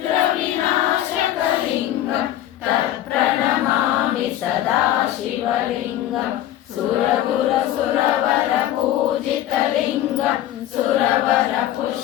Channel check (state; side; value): quieter; right; 12.9 dB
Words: तत्प्रणमामि सदा शिवलिङ्गं सुरगुरसुरवरपूजितलिङ्गं